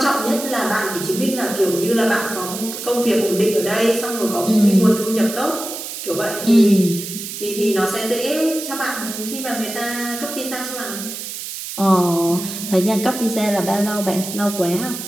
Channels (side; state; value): right; noise; hiss, 8 dB below the sound